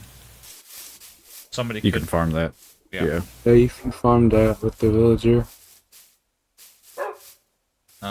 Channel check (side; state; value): both; identical; correlation 1.00